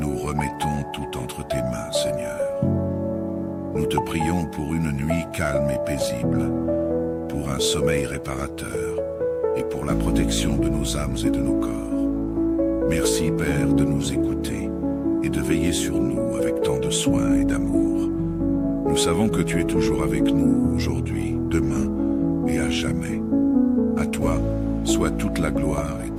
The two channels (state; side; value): identical; both; correlation 1.00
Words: remettons tout entre tes mains, Seigneur. Nous te prions pour une nuit calme et paisible, pour un sommeil réparateur et pour la protection de nos âmes et de nos corps. Merci, Père, de nous écouter et de veiller sur nous avec tant de soin et d'amour. Nous savons que tu es toujours avec nous aujourd'hui, demain et à jamais. À toi soit toute la gloire et